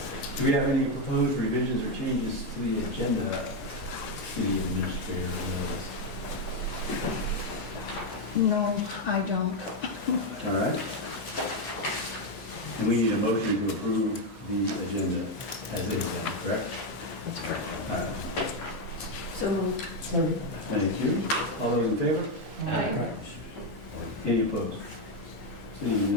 Do we have any proposed revisions or changes to the agenda, City Administrator? No, I don't. All right. And we need a motion to approve the agenda as it is, correct? That's correct. All right. So moved. Thank you. All those in favor? Aye. Any opposed? Seeing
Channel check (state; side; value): late; right; 1.1 ms